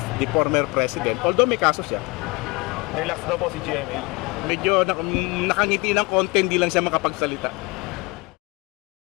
the former president, although may kaso siya, Relax daw po si GMA. medyo nakangiti ng konti, hindi lang siya makapagsalita.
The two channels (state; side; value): quieter; right; 25.2 dB